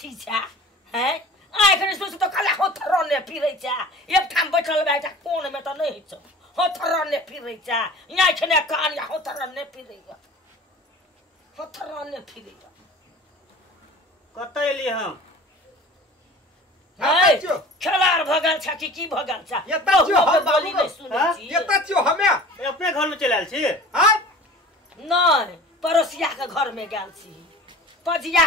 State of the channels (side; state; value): both; normal; correlation 0.42